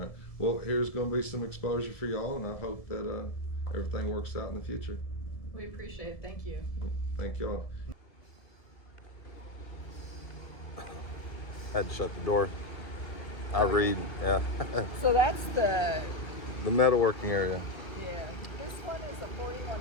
Well, here's going to be some exposure for y'all, and I hope that everything works out in the future. We appreciate it. Thank you. Thank y'all. Had to shut the door. I read, yeah. So that's the The metalworking area. Yeah, this one is a 41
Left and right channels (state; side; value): late; right; 1.9 ms